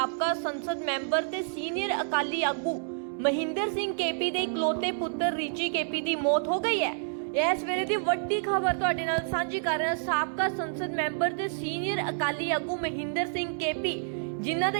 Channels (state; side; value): silent; left; digital silence